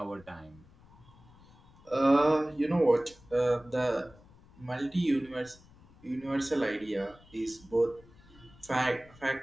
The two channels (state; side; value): noise; left; rumble, 25 dB below the sound